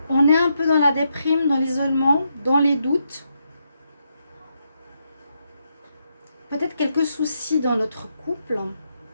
On est un peu dans la déprime, dans l'isolement, dans les doutes. Peut-être quelques soucis dans notre couple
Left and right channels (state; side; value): inverted; both; correlation -0.81